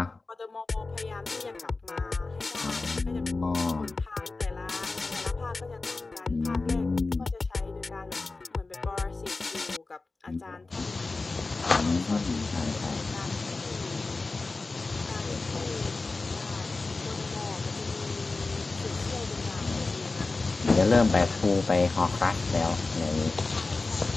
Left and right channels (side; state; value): right; quieter; 3.6 dB